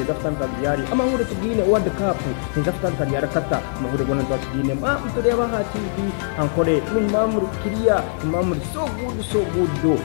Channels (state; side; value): silent; right; digital silence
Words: fatan kariyari amahure tugine World Cup neza fatan kariyari kata amahure gona tugine mutureva ha TV Ankole numamuru kiriya numamuru so good